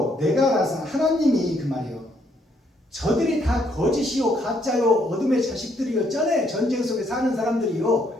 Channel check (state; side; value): normal; both; correlation 0.71